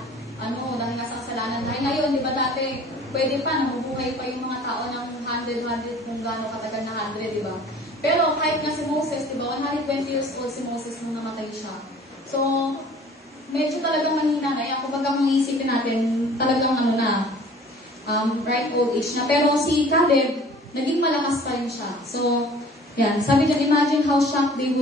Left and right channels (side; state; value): both; normal; correlation 0.49